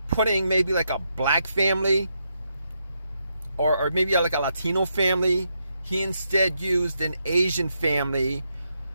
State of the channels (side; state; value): both; inverted; correlation -0.81